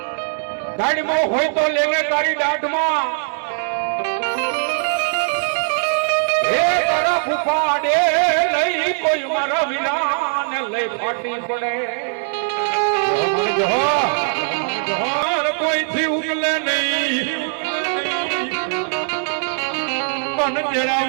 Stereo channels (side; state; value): left; silent; 66 dB below the other